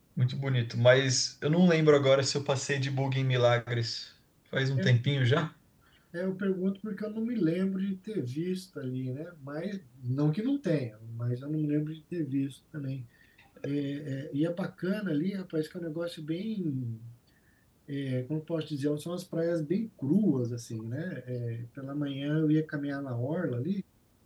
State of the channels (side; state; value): both; identical; correlation 1.00